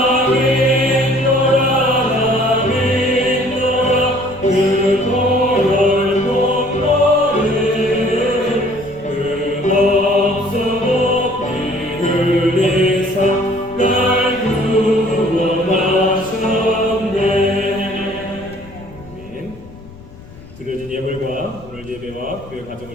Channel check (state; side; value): noise; left; rumble, 19 dB below the sound